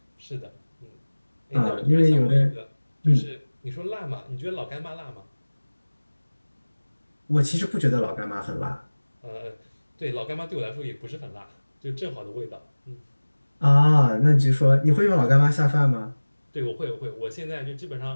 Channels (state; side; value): inverted; both; correlation -1.00